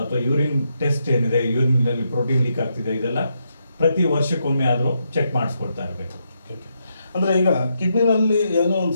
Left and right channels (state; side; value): inverted; both; correlation -0.81